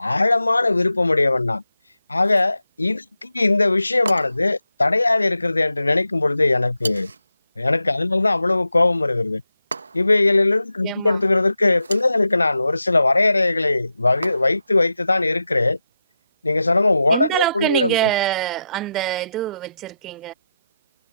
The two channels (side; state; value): both; inverted; correlation -0.88